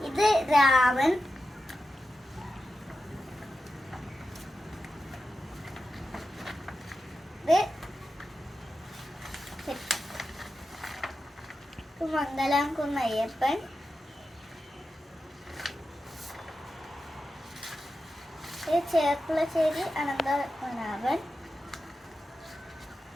ഇത് രാമൻ, ഇത് മംഗലാംകുന്ന് അയ്യപ്പൻ, ഇത് ചേർപ്പുളശ്ശേരി അനന്തപത്മനാഭൻ,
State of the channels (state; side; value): normal; both; correlation 0.91